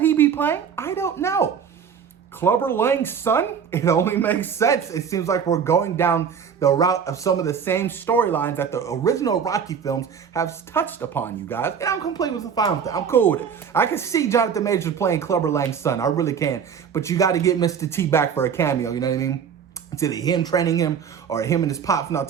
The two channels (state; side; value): quieter; left; 7.2 dB